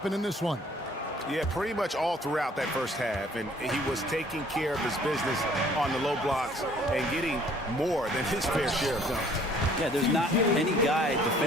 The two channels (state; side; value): normal; both; correlation 0.58